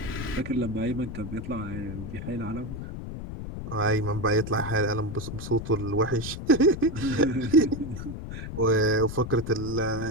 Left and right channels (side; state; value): left; noise; rumble, 8 dB below the sound